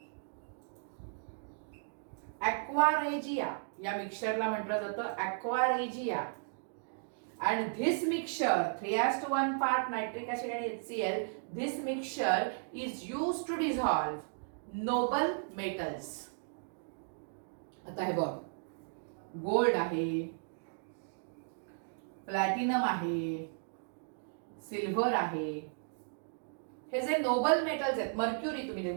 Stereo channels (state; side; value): silent; left; digital silence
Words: ॲक्वारेजिया. या मिक्सचरला म्हटलं जातं ॲक्वारेजिया. and this mixture 3:1 part nitric acid and HCl, this mixture is used to dissolve noble metals. आता हे बघ, गोल्ड आहे, प्लॅटिनम आहे, सिल्वर आहे, हे जे नोबल मेटल्स आहेत, मर्क्युरी तुम्ही